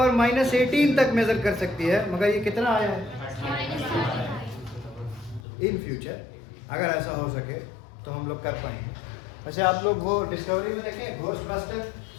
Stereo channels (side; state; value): right; drops out; at 5.4 s